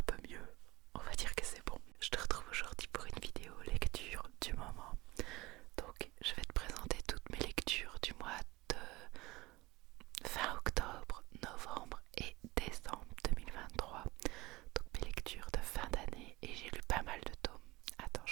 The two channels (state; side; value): quieter; left; 20.9 dB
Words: peu mieux. On va dire que c'est bon. Je te retrouve aujourd'hui pour une vidéo lecture du moment. Donc, je vais te présenter toutes mes lectures du mois de fin octobre, novembre et décembre 2023. Donc mes lectures de fin d'année et j'ai lu pas mal de tomes. Attends,